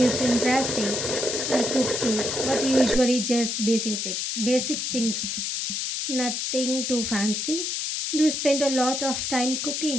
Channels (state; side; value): noise; left; hiss, 2 dB below the sound